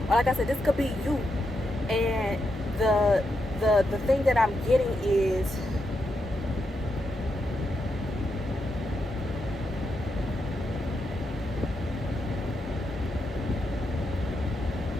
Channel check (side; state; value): both; normal; correlation 0.84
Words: Or like I said, this could be you. And the thing that I'm getting is,